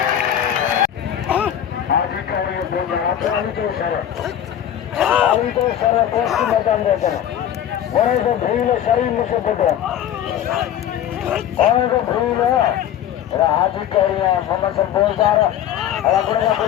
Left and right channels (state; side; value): quieter; right; 10.6 dB